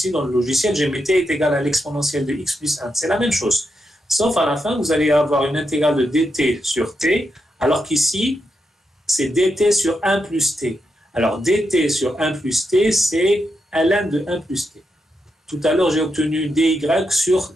dans le logiciel, j'ai mis t est égal à l'exponentielle de x plus 1. C'est la même chose. Sauf à la fin, vous allez avoir une intégrale de dt sur t, alors qu'ici, c'est dt sur 1 plus t. Alors, dt sur 1 plus t, c'est ln de 1 plus t. Tout à l'heure, j'ai obtenu dy sur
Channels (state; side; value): normal; both; correlation 0.85